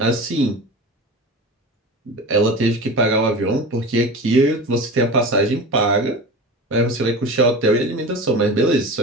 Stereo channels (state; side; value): normal; both; correlation 0.31